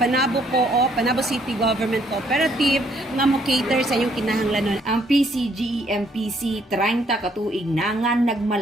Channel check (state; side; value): normal; both; correlation 0.67